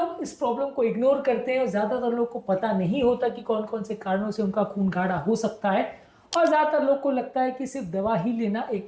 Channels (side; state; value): both; identical; correlation 1.00